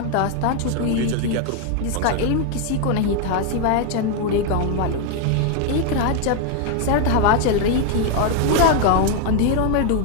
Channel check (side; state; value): both; different; correlation 0.00